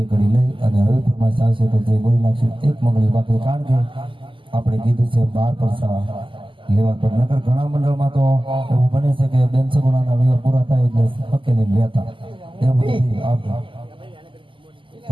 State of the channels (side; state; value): left; late; 0.25 ms